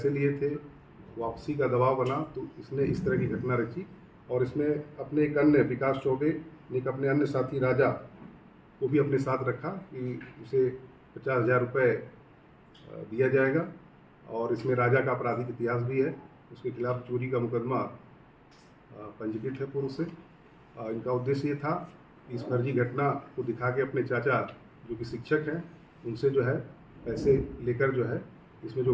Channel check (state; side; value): identical; both; correlation 1.00